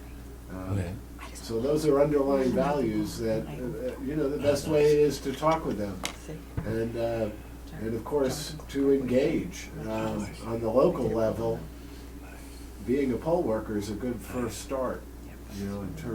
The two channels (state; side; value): identical; both; correlation 1.00